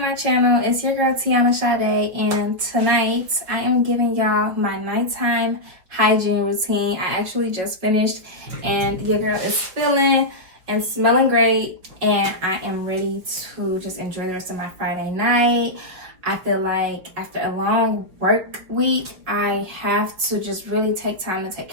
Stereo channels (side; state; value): left; late; 5.6 ms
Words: channel. It's your girl Tionna Sade, and tonight I am giving y'all my nighttime hygiene routine. I actually just finished, and your girl is feeling and smelling great, and I am ready to just enjoy the rest of my Friday night. I feel like after a long work week, I have to just really take time to take